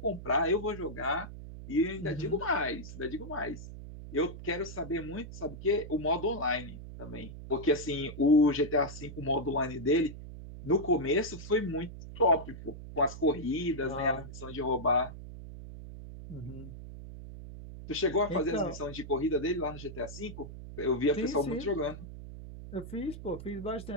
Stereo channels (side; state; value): right; noise; hum, 12 dB below the sound